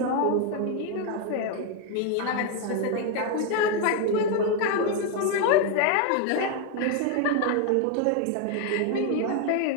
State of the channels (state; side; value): different; both; correlation 0.01